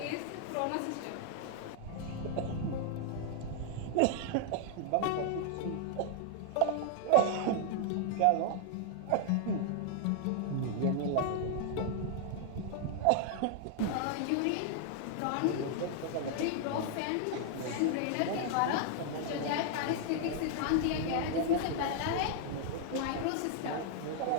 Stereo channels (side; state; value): both; different; correlation 0.00